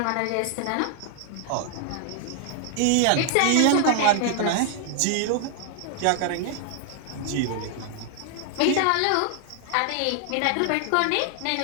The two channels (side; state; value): both; different; correlation 0.00